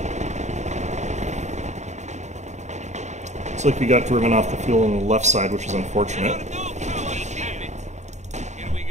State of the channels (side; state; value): left; late; 0.34 ms